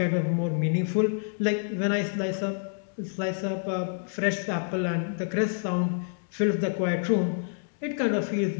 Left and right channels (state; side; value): silent; right; digital silence